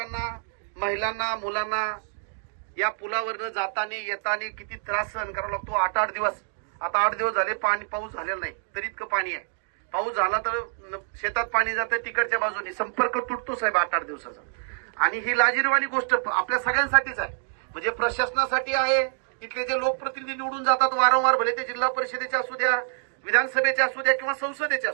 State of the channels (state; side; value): silent; left; 61 dB below the other